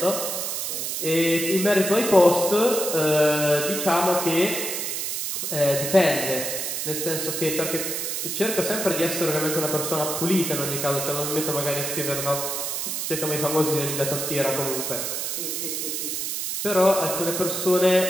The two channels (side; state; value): right; noise; hiss, 2 dB below the sound